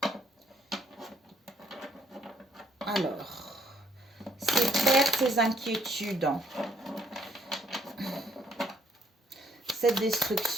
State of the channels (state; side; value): normal; both; correlation 0.67